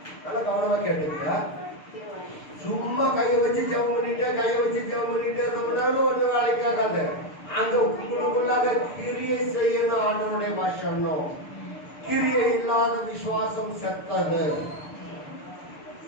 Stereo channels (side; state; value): right; late; 6.7 ms